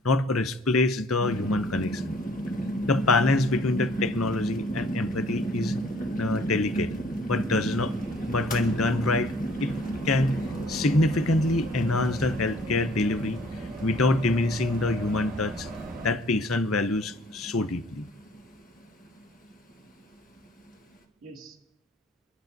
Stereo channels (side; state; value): both; normal; correlation 0.56